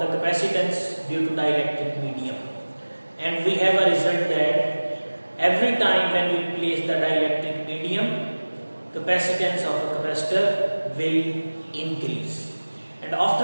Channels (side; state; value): both; inverted; correlation -1.00